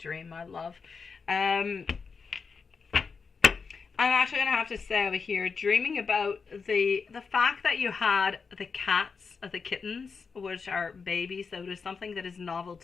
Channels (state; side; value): quieter; right; 5.3 dB